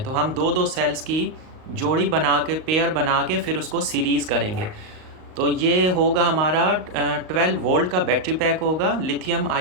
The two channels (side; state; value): left; late; 38 ms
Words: तो हम दो दो सेल्स की जोड़ी बना के, पेयर बना के फिर उसको सीरीज़ करेंगे। तो ये होगा हमारा 12 वोल्ट का बैटरी पैक होगा, लिथियम